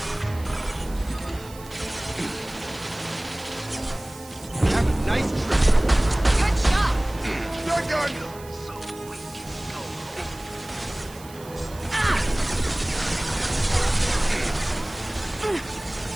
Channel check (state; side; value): noise; right; hiss, 19 dB below the sound